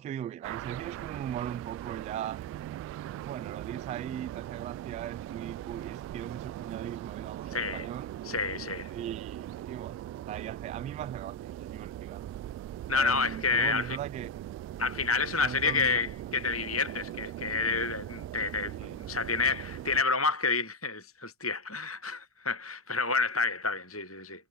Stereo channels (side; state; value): both; normal; correlation 0.05